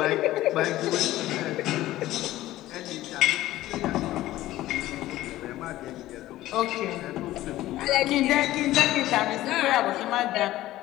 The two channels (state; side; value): quieter; right; 15.5 dB